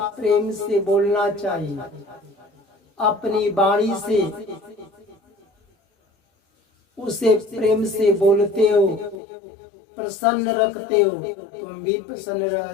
प्रेम से बोलना चाहिए। अपनी वाणी से उसे प्रेम से बोलते हो, प्रसन्न रखते हो, तुम भी प्रसन्न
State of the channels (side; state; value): right; drops out; at 9.2 s